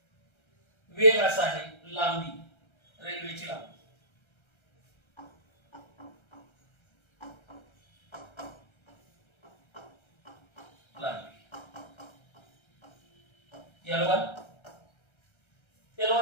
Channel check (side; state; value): right; late; 1.3 ms